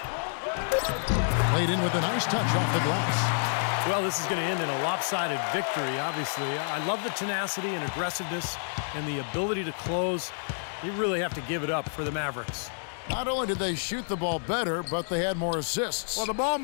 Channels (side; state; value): right; silent; digital silence